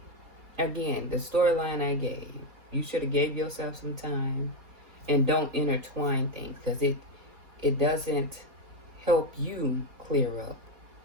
again, the storyline I gave. You should have gave yourself some time and don't intertwine things, because it doesn't help you clear up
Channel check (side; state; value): left; late; 4.2 ms